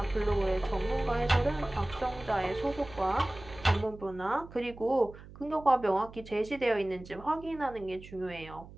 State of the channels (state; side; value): noise; right; hum, 17 dB below the sound